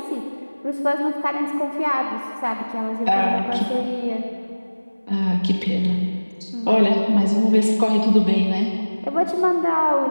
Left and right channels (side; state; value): both; inverted; correlation -1.00